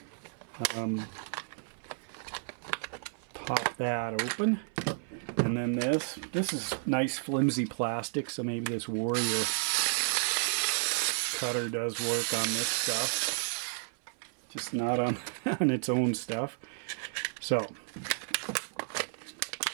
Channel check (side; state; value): left; silent; 56 dB below the other